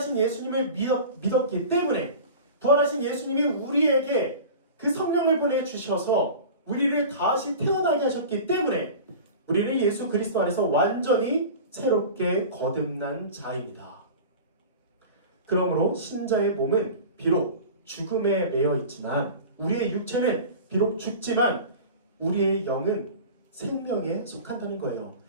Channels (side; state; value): both; inverted; correlation -0.36